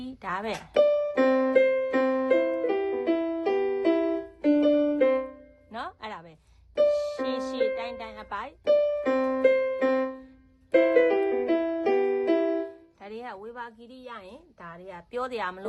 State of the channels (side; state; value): both; identical; correlation 1.00